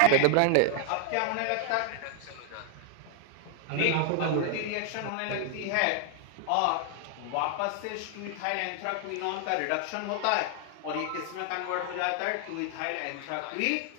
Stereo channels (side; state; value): both; different; correlation 0.00